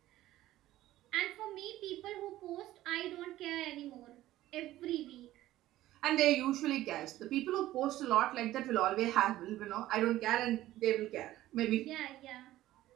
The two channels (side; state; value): left; quieter; 15.0 dB